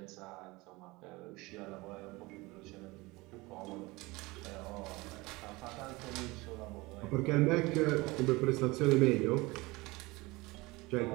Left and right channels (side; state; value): left; quieter; 22.6 dB